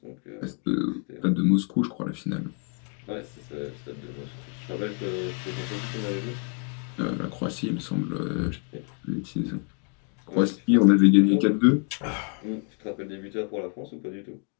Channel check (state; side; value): quieter; right; 38.6 dB